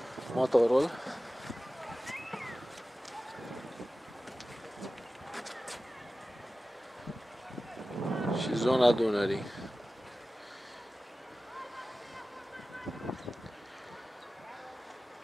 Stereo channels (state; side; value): normal; both; correlation 0.96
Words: Motorul. Și zona Dunării.